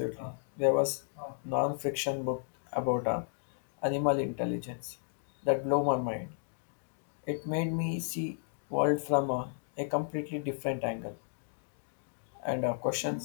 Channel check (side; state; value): right; silent; digital silence